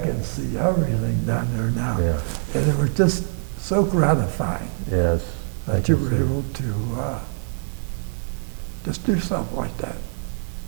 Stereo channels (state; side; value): silent; left; digital silence